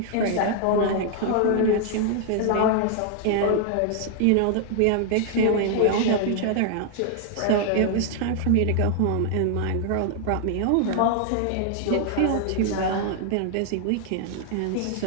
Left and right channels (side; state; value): both; different; correlation 0.00